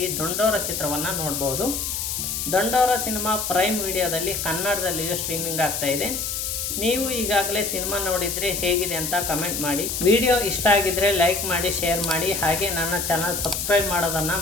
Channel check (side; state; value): left; noise; hiss, 2 dB below the sound